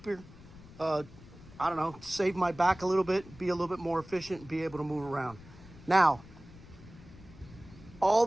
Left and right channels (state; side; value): noise; left; rumble, 19 dB below the sound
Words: save my back a little bit, be a little bit more efficient, and be able to move around. Now, all